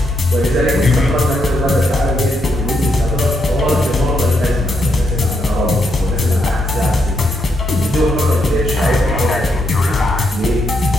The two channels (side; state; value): both; normal; correlation 0.78